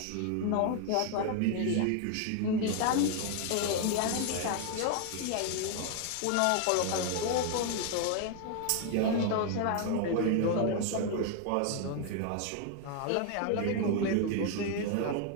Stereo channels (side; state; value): both; different; correlation 0.00